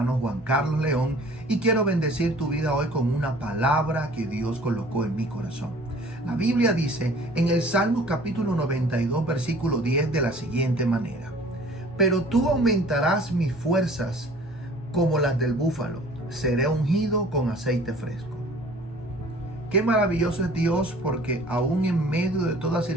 Juan Carlos León. Y quiero bendecir tu vida hoy con una palabra que Dios colocó en mi corazón. La Biblia dice en el Salmo capítulo 92, versículo 10 de la siguiente manera: pero tú aumentarás mis fuerzas como las del búfalo, seré ungido con aceite fresco. Qué maravilloso es Dios, porque aún en medio de toda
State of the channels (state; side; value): normal; both; correlation 0.50